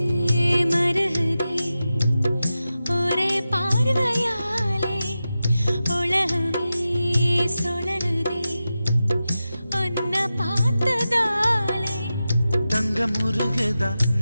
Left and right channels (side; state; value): both; inverted; correlation -0.93